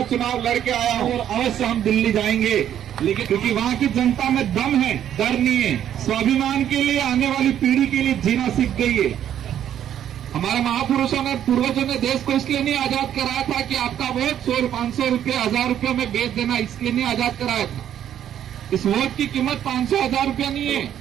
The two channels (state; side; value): quieter; left; 10.4 dB